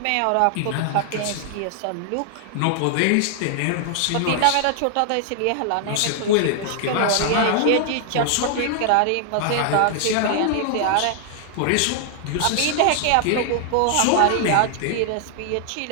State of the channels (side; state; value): both; different; correlation 0.00